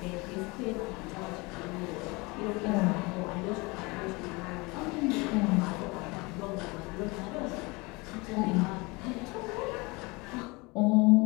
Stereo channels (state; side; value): quieter; right; 25.6 dB